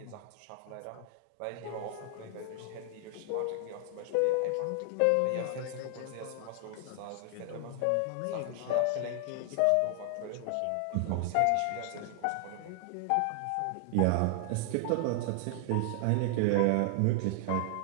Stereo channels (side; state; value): both; different; correlation 0.00